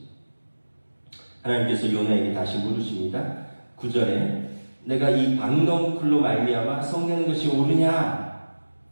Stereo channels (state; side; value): inverted; both; correlation -1.00